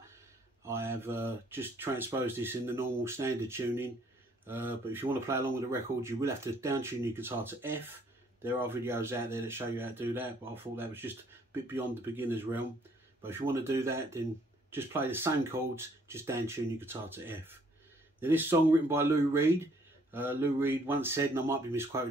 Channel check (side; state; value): both; normal; correlation 0.64